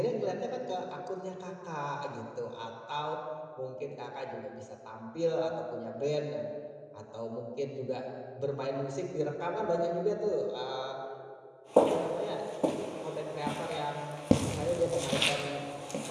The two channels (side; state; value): both; identical; correlation 1.00